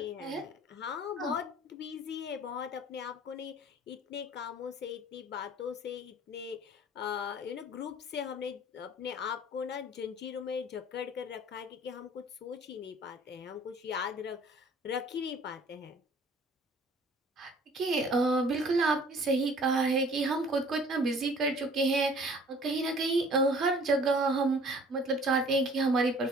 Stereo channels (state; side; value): normal; both; correlation 0.51